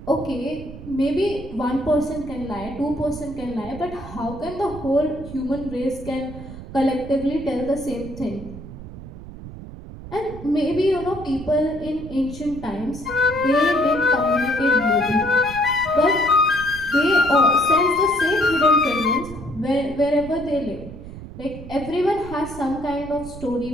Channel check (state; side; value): noise; right; rumble, 13 dB below the sound